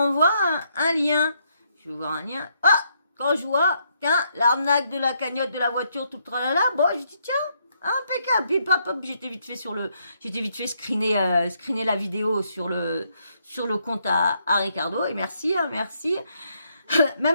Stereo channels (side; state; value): both; inverted; correlation -0.74